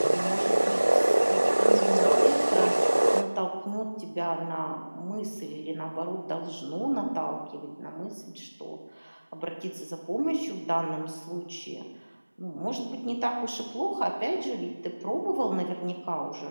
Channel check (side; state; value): both; inverted; correlation -1.00